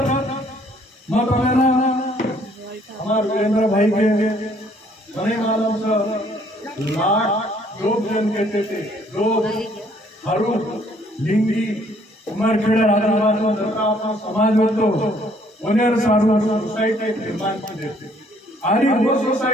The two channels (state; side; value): normal; both; correlation 0.63